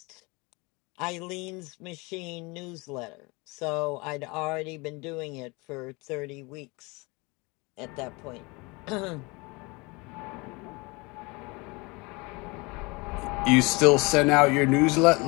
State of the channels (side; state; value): right; quieter; 26.4 dB